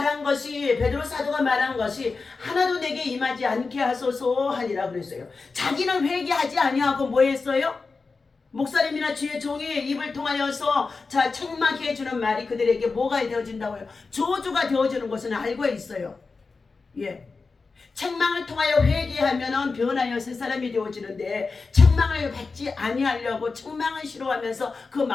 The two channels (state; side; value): quieter; right; 4.3 dB